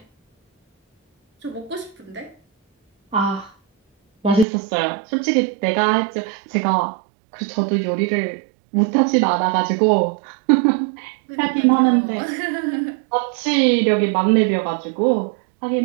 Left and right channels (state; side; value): drops out; left; at 4.5 s